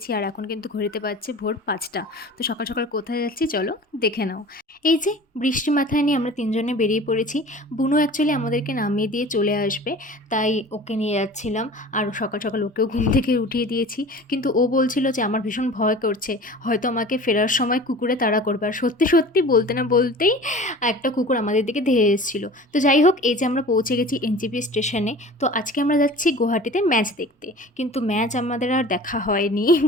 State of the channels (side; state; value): both; normal; correlation 0.41